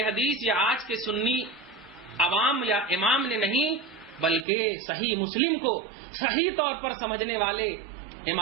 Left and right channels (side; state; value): left; drops out; at 4.5 s